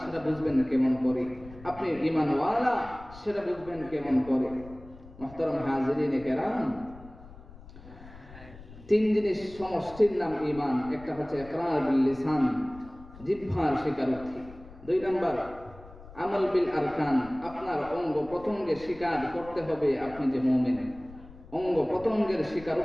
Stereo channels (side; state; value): left; noise; rumble, 19 dB below the sound